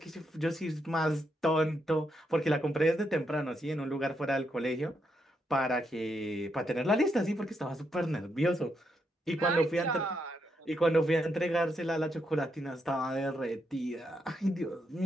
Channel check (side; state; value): both; normal; correlation 0.80